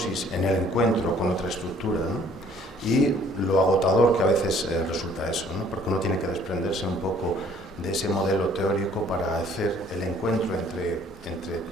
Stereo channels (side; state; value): both; normal; correlation 0.58